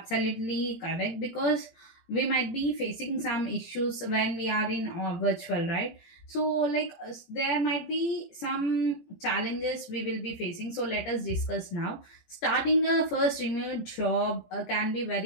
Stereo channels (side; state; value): right; late; 18 ms